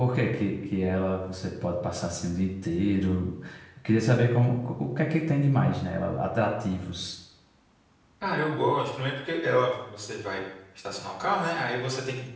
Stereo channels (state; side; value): identical; both; correlation 1.00